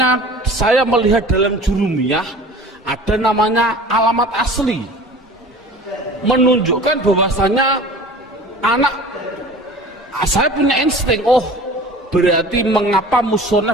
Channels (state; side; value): normal; both; correlation 0.42